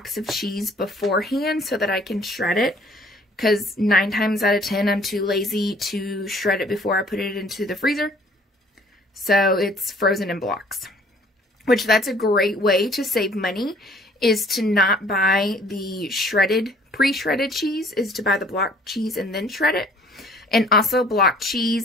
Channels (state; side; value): normal; both; correlation 0.56